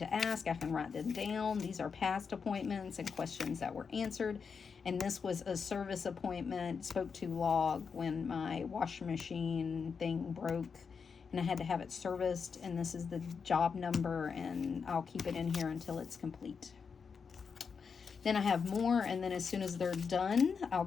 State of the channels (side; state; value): right; quieter; 5.8 dB